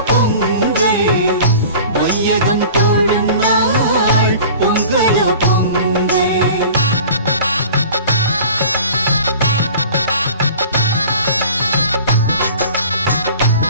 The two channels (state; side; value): inverted; both; correlation -0.42